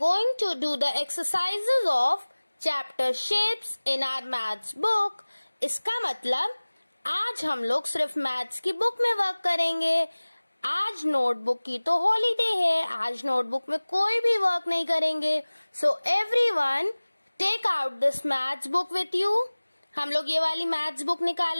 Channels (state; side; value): inverted; both; correlation -1.00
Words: to do the exercises of chapter shapes in our maths book. इसका मतलब आज हम लोग सिर्फ मैथ्स की बुक में वर्क करेंगे. आज नोटबुक की तो हॉलीडे है, आज नोटबुक में कोई भी वर्क नहीं करेंगे. So everyone take out this maths book with you. हम लोग ये वाली मैथ्स बुक